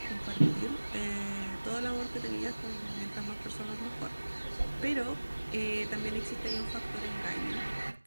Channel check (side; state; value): both; inverted; correlation -1.00